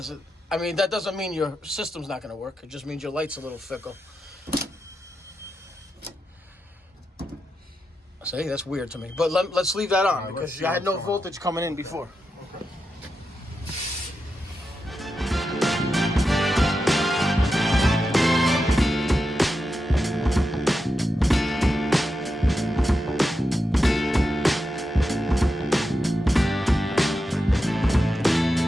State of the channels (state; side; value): normal; both; correlation 0.88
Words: I mean, that doesn't mean your system's not going to work. It just means your light's a little fickle. See, that's weird to me. But let's leave that on because I had no voltage coming in before. Okay.